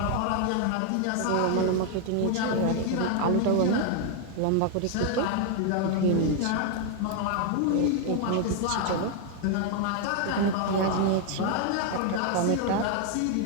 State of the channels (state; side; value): different; both; correlation 0.00